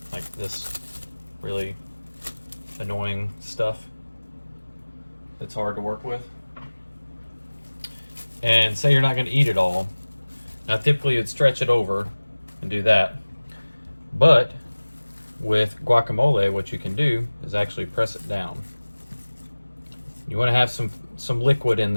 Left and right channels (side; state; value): both; inverted; correlation -1.00